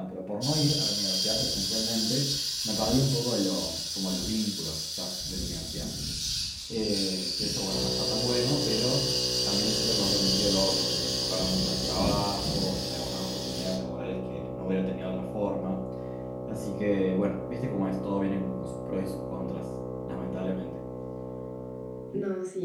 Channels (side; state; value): both; identical; correlation 1.00